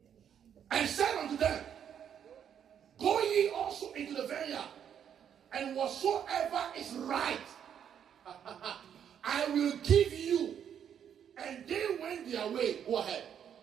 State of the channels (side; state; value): left; quieter; 8.7 dB